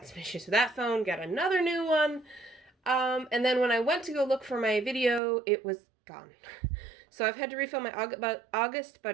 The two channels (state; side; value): drops out; left; at 5.2 s